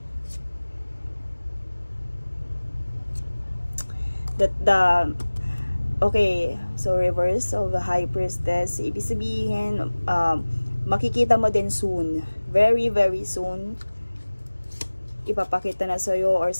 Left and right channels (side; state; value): both; inverted; correlation -1.00